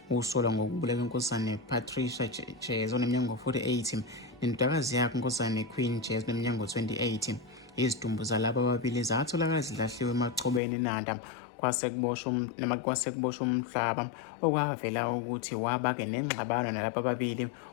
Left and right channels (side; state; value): right; drops out; at 10.6 s